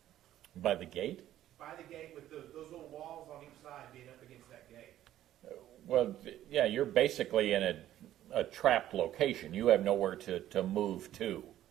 By the gate? By the gate with those little walls on each side being up against that gate. Well, yeah, you're basically in a trapped location. You have nowhere to move to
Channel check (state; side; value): quieter; left; 12.7 dB